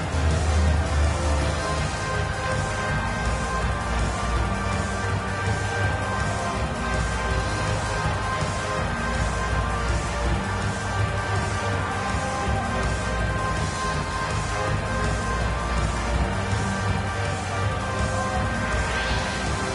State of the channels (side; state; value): both; identical; correlation 1.00